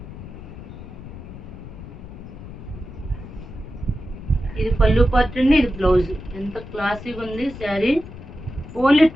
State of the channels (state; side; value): noise; left; rumble, 13 dB below the sound